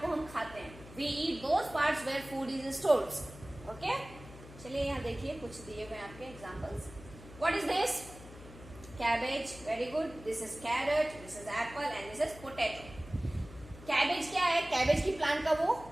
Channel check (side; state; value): left; noise; hum, 17 dB below the sound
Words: हम खाते हैं। We eat those parts where food is stored. Okay, चलिए यहाँ देखिए, कुछ दिए हुए आपके examples. What is this, cabbage, very good. This is carrot, this is apple and this is potato. Cabbage क्या है, cabbage की प्लांट का वो